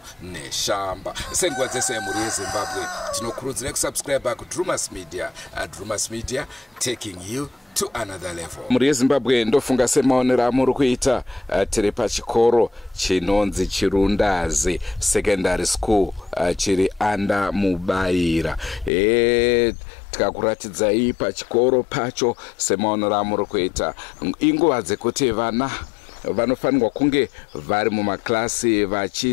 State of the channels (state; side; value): drops out; right; at 18.9 s